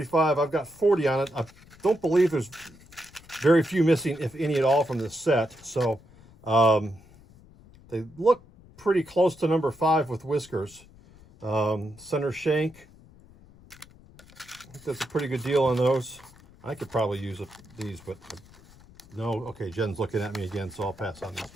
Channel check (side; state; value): left; noise; rumble, 24 dB below the sound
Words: I've got 40 on it. I don't believe there's very few missing, if any at all, from this set. So they look pretty close to number 5 with whiskers. Center shank. I think that's a pretty good deal on those. I could probably use these, but no. Okay, Jen's looking at me again, so I'll pass on this